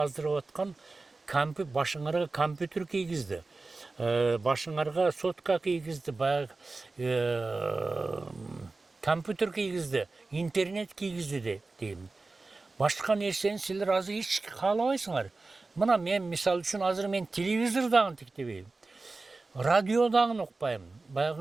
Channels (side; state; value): left; quieter; 3.6 dB